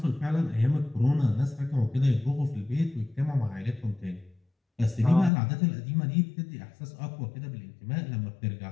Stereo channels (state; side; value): drops out; right; at 5.3 s